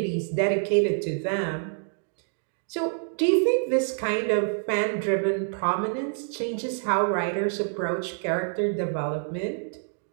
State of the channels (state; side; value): silent; left; 60 dB below the other